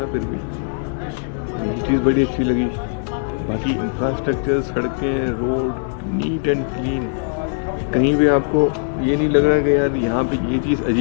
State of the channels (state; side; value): silent; right; 66 dB below the other